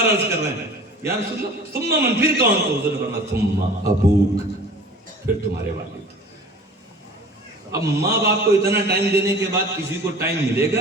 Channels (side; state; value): both; normal; correlation 0.43